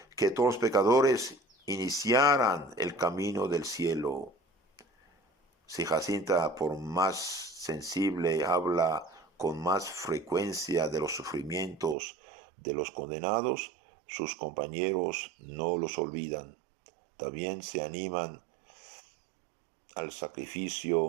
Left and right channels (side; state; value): left; drops out; at 12.0 s